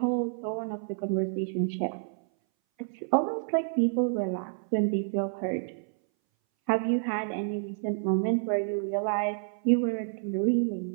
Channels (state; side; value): silent; left; 59 dB below the other